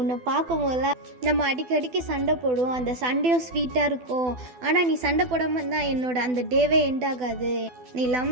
பார்க்கும் போதெல்லாம் நம்ம அடிக்கடிக்கு சண்டை போடுவோம் அந்த சண்டையும் ஸ்வீட்டாக இருக்கும், ஆனால் நீ சண்டை போடாமல் தான் என்னோட அந்த டேவே எண்ட் ஆகாது, நீ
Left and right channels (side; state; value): left; late; 12 ms